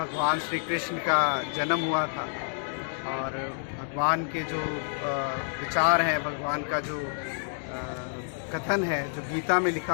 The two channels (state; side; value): silent; right; digital silence